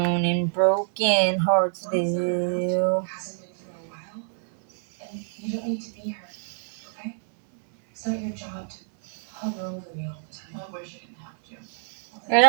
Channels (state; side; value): silent; left; 61 dB below the other